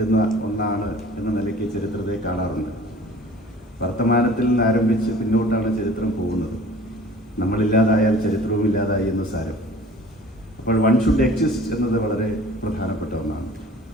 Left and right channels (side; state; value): both; normal; correlation 0.47